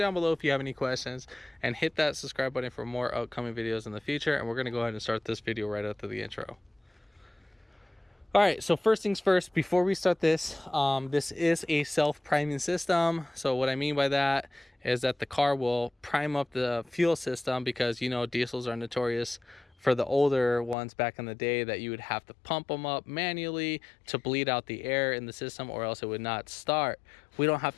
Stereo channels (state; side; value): drops out; right; at 20.8 s